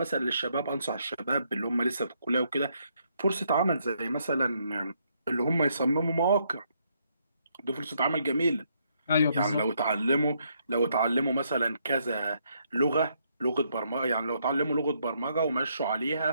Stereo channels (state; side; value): inverted; both; correlation -0.74